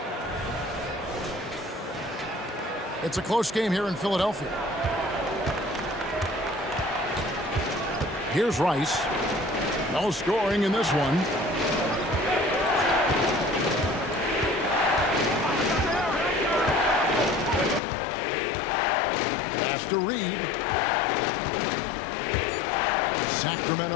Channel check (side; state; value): right; drops out; at 17.8 s